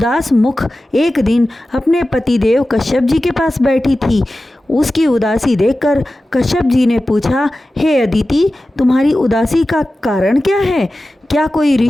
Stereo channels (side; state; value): both; normal; correlation 0.95